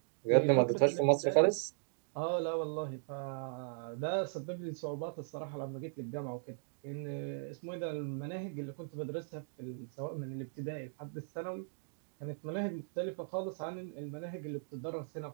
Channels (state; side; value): silent; left; digital silence